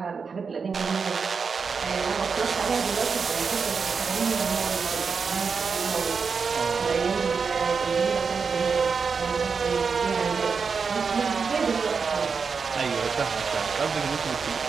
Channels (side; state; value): left; quieter; 5.4 dB